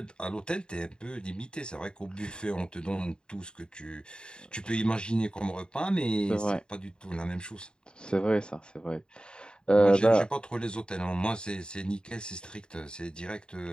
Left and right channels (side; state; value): right; late; 0.049 ms